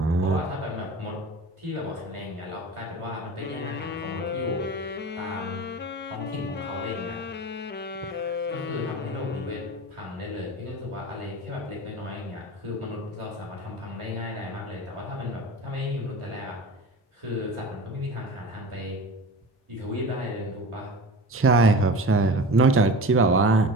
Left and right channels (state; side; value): normal; both; correlation 0.34